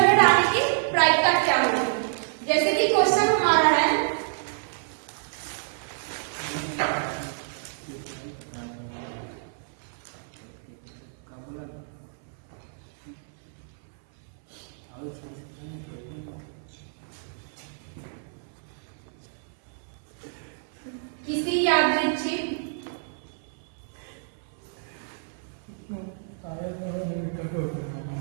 हेड आने की प्रायिकता क्या होगी, जैसे कि क्वेश्चन हमारा है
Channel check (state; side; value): silent; left; 59 dB below the other